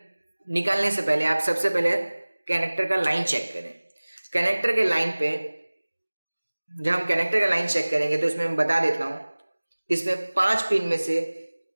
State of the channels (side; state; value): both; inverted; correlation -1.00